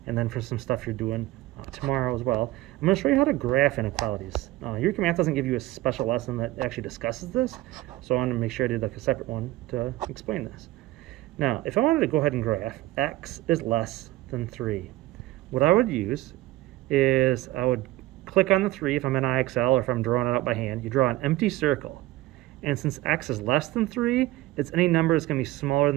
and then for some stuff you're doing tomorrow as well. I'm going to show you how to graph inequalities. Eureka Math doesn't give you a special lesson that actually discusses this, so I wanted to make sure I did like a separate one to explain this. Now, if I wanted to go ahead and graph x is less than 3, what I would use is I would click on the 3 if I'm in IXL or if I'm drawing it out by hand. You draw an empty circle. And since x is less than 3, it's any number that's going to be smaller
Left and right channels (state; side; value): quieter; left; 17.0 dB